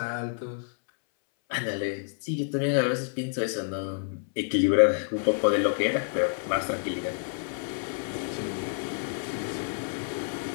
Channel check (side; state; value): right; silent; 59 dB below the other